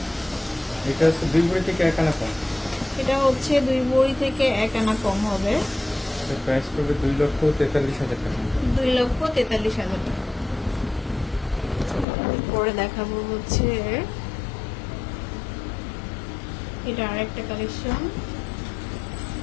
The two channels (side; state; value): right; drops out; at 12.1 s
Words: এটা হচ্ছে 2 ভরি থেকে 1 আনা কম। এটা হচ্ছে 2 ভরি থেকে 1 আনা কম হবে। এর প্রাইস পড়বে 2,43,000 টাকা। 2,43,000 টাকা। পরে দেখাবো হচ্ছে এটা আরেকটা কালেকশন।